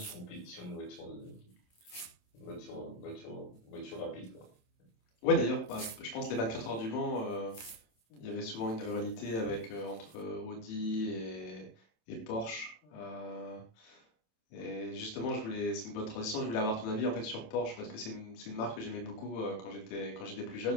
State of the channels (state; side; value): late; right; 27 ms